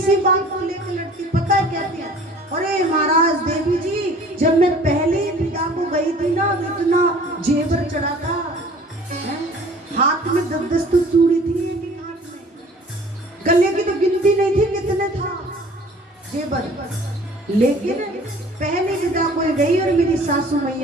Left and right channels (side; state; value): both; normal; correlation 0.49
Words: बात को लेकर लड़ती, पता है कहती है, अरे महाराज देवी जी जब मैं पहले पिता को गई थी ना तो इतना जेवर चढ़ा था, हाथ में 10-10 तो चूड़ी थी, एक हाथ में गले की तो गिनती नहीं थी कितने था जेवर, लेकिन पहले पिता को गई और मेरी सासू